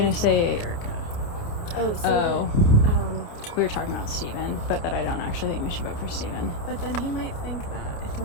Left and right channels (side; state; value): right; late; 29 ms